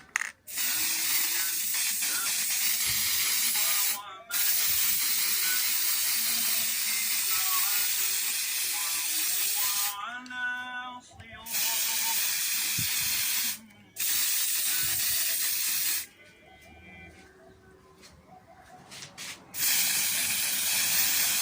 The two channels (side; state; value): both; identical; correlation 1.00